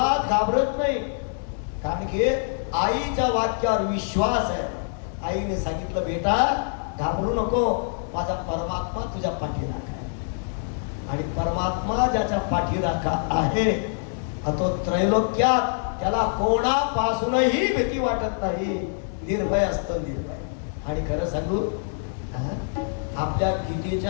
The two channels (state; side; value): silent; right; digital silence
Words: घाबरत नाही. कारण की आईच्या वाक्यावर विश्वास आहे. आईने सांगितलं, बेटा घाबरू नको, माझा परमात्मा तुझ्या पाठीराखा आहे. आणि परमात्मा ज्याच्या पाठीराखा आहे तो त्रैलोक्यात त्याला कोणापासूनही भीती वाटत नाही. निर्भय असतं, निर्भय. आणि खरं सांगू, आपल्या